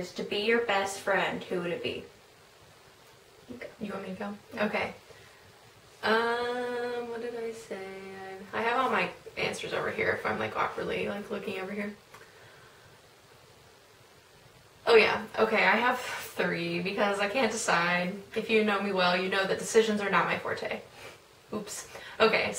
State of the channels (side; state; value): both; identical; correlation 1.00